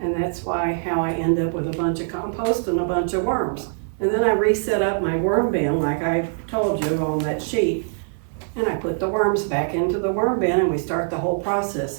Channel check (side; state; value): left; silent; 64 dB below the other